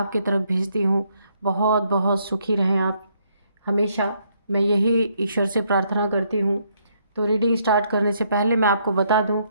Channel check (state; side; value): inverted; both; correlation -0.72